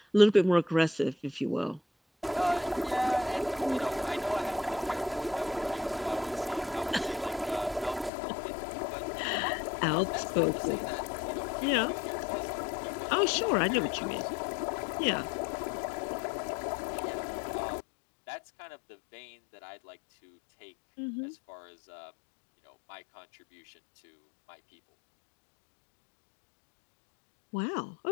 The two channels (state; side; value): drops out; right; at 8.1 s